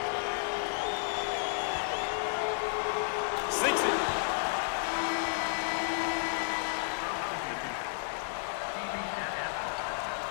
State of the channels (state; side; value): silent; right; digital silence